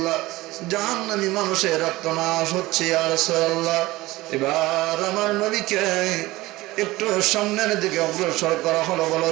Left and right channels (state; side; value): quieter; left; 19.2 dB